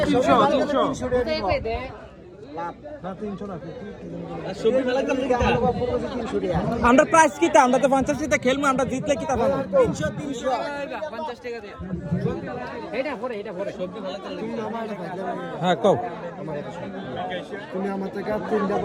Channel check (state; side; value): identical; both; correlation 1.00